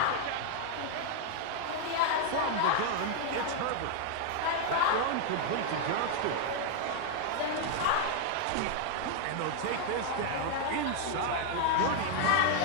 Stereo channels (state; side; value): different; both; correlation 0.00